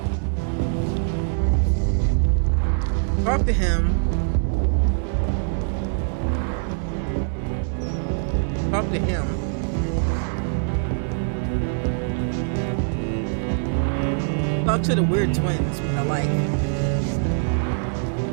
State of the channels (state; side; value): silent; left; digital silence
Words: Talk to him. Talk to him. Talk to the weird twins, which I like.